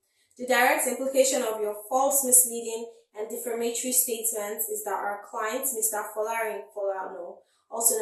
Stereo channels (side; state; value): both; identical; correlation 1.00